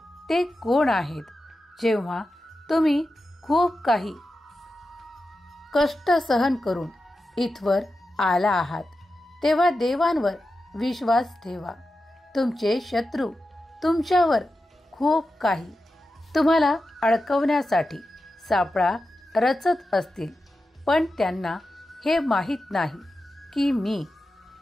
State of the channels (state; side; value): normal; both; correlation 0.91